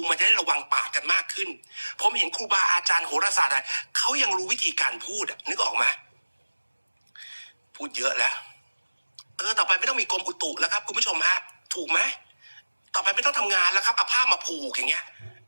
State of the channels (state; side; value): inverted; both; correlation -1.00